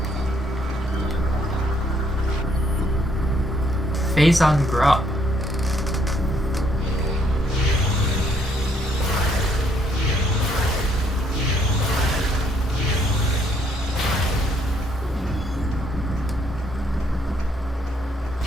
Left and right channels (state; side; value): normal; both; correlation 0.69